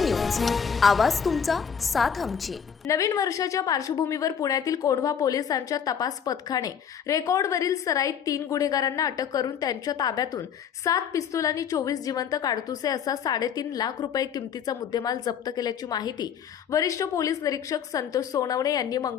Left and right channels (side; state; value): right; quieter; 7.7 dB